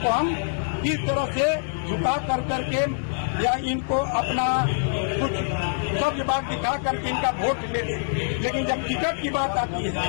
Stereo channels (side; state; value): right; silent; 62 dB below the other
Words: हम किस तरह से झुका कर करके या इनको अपना कुछ सब बात दिखा करके इनका वोट ले लें। लेकिन जब टिकट की बात आती